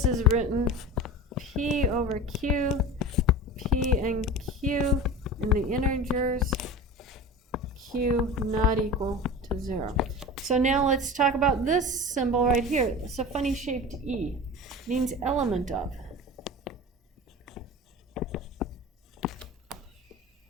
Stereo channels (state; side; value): normal; both; correlation 0.33